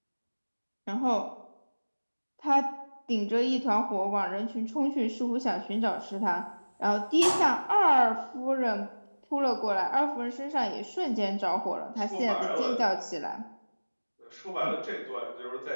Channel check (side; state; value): both; inverted; correlation -1.00